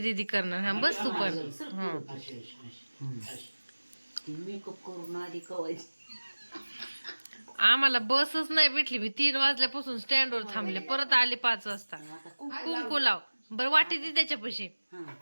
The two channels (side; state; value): both; inverted; correlation -1.00